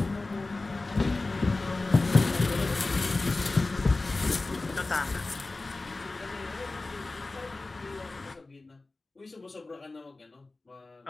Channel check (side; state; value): right; quieter; 3.3 dB